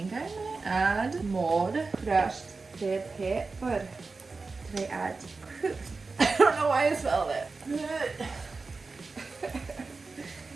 I'm gonna add more crushed red pepper. Did I add? I don't know why I smelled it.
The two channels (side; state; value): left; quieter; 4.0 dB